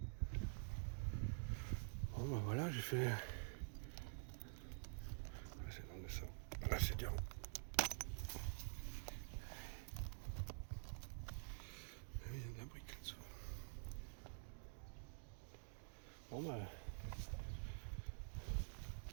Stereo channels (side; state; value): left; silent; digital silence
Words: Bon bah voilà, j'ai fait. Ah, c'est dans le ça. Là c'est dur. Il y a de la brique là-dessous. Bon bah.